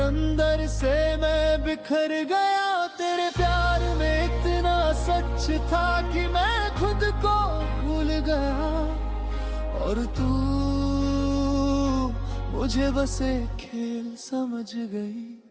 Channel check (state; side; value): identical; both; correlation 1.00